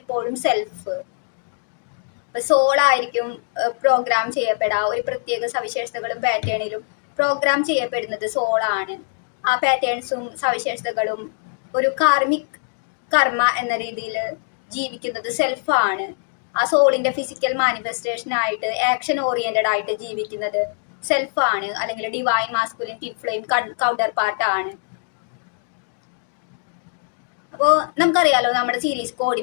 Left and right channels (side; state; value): right; silent; digital silence